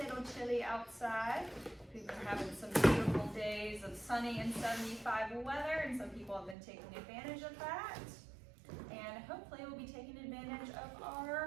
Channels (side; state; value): left; drops out; at 6.6 s